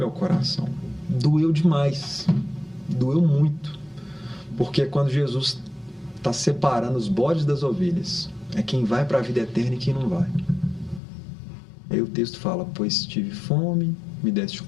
coração. Doeu demais. Doeu muito. Porque quando Jesus está separando os bodes das ovelhas, é quem vai para a vida eterna e quem não vai. Aí o texto fala, pois tive fome, me deste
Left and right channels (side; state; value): right; drops out; at 11.0 s